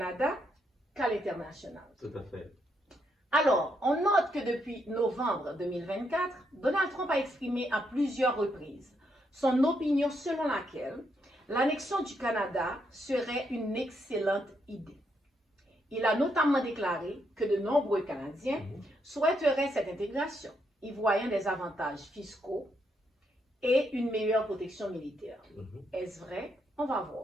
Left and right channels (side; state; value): both; normal; correlation 0.77